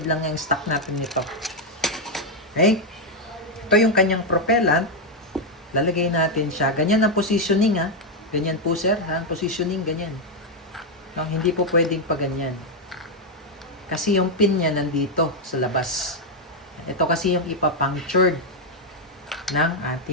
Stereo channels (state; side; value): normal; both; correlation 0.01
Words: lang yung stock natin nito. Okay? Ito yung kanyang propellant. Lalagay natin siya. Ganyan ang positioning, ha. Ganyan po, sir. Ha? Positioning, ganyan. No, hindi po pwedeng pa ganyan. Kasi yung pin niya nandito sa labas. Ito kasi yung ipapunctured ng